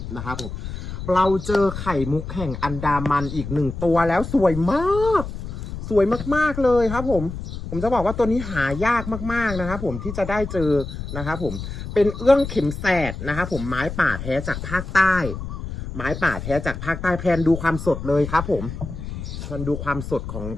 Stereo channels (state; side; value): noise; left; rumble, 8 dB below the sound